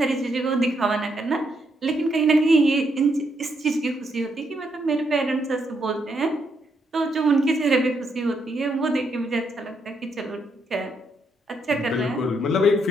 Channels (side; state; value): both; normal; correlation 0.77